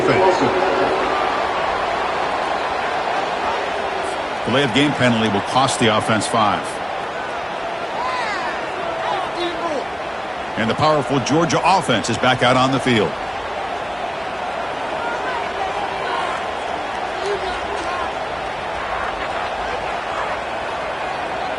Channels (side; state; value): both; identical; correlation 1.00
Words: Delay of game penalty will cost the offense 5. And the powerful Georgia offense is back out on the field.